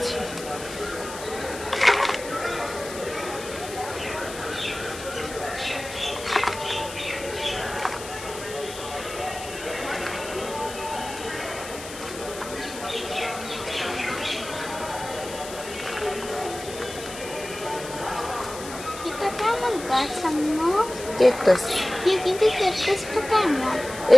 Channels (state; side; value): noise; left; hiss, 12 dB below the sound